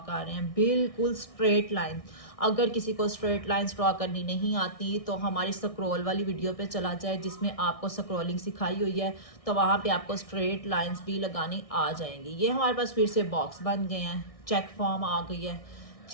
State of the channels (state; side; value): late; right; 1.6 ms